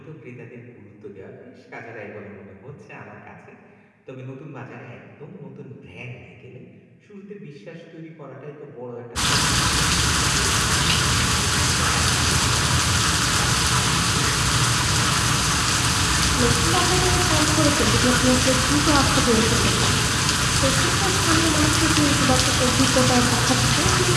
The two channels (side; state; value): both; identical; correlation 1.00